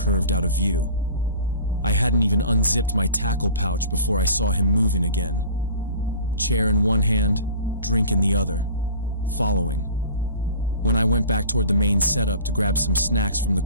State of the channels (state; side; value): inverted; both; correlation -0.42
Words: out of view. I hadn't even unzipped my tackle pouch before I saw him moving again. Chair in one hand, drink in the other, following. When I went back toward the main setup to grab some snacks from the